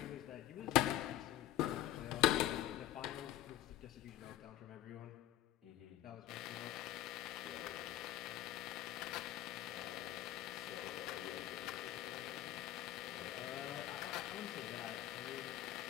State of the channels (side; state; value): right; quieter; 13.6 dB